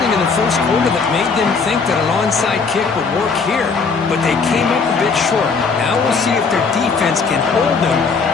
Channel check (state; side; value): quieter; right; 4.9 dB